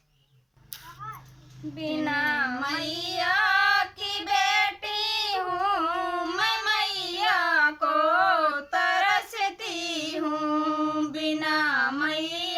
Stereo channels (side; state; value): both; identical; correlation 1.00